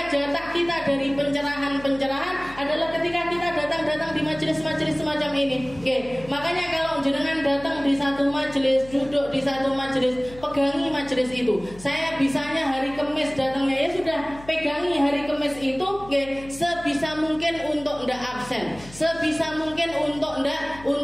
jatah kita dari pencerahan-pencerahan adalah ketika kita datang di majelis-majelis semacam ini. Oke, makanya kalau jenengan datang di satu majelis, duduk di satu majelis, pegangi majelis itu. Saya bisanya hari Kamis datangnya, ya sudah pegangi hari Kamis itu, oke, sebisa mungkin untuk ndak absen, sebisa mungkin untuk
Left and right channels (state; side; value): noise; left; hum, 19 dB below the sound